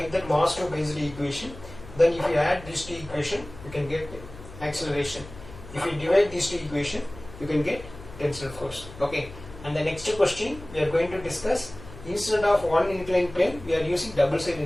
that mass 2 based equation. Then if you add these two equation, you can get acceleration. If you divide these two equation, you can get tensile force. Okay. And the next question we are going to discuss, instead of one inclined plane, we are using double side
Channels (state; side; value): noise; left; hum, 16 dB below the sound